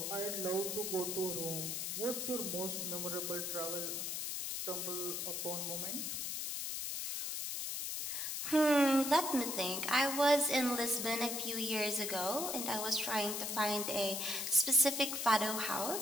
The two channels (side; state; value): left; noise; hiss, 3 dB below the sound